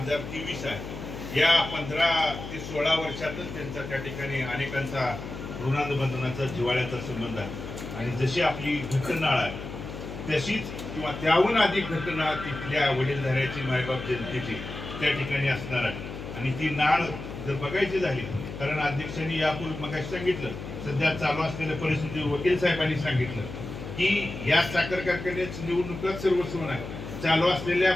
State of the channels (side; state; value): left; noise; hum, 9 dB below the sound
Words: आहे. या 15 ते 16 वर्षातच त्यांचा त्या ठिकाणी अनेकांचा ऋणानुबंधनाचा, जिव्हाळ्याचा संबंध आहे. आणि जशी आपली घटनाळ आहे तशीच किंवा त्याहून अधिक घटना तिथल्या वडीलधाऱ्याची, मायबाप जनतेची त्या ठिकाणी असणार आहे. आणि ती नाळ जर बघायची झाली, कारण अध्यक्षांनी यापूर्वी मग सांगितलं सध्या चालू असलेल्या परिस्थिती वकील साहेबांनी सांगितलं की या साखर कारखान्याची निवडणुका सर्वस्व नाही. चालू असलेल्या